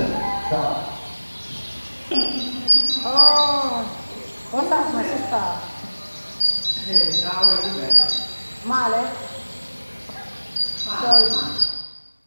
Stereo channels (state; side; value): inverted; both; correlation -1.00